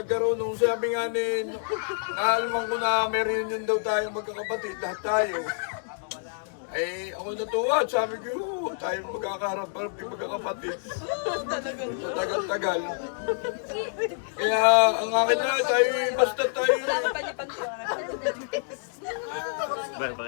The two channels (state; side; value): silent; right; digital silence